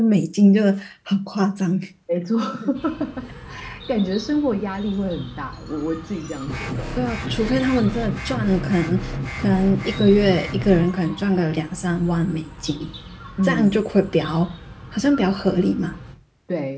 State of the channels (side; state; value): both; identical; correlation 1.00